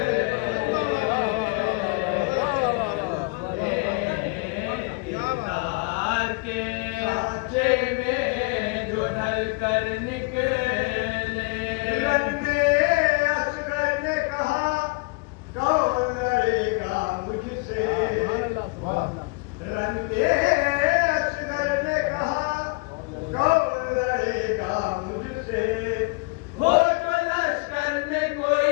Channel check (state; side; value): quieter; right; 29.0 dB